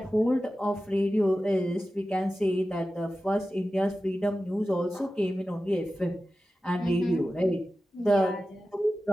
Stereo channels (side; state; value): both; normal; correlation 0.94